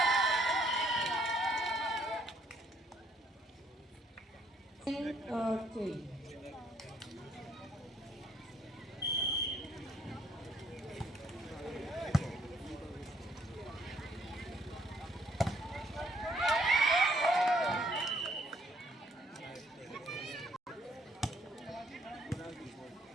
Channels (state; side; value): normal; both; correlation 0.66